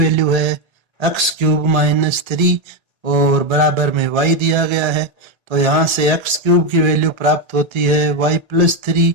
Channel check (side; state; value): left; late; 1.3 ms